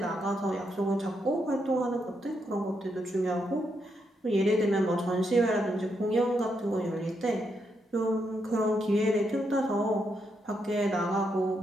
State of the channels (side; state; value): both; normal; correlation 0.80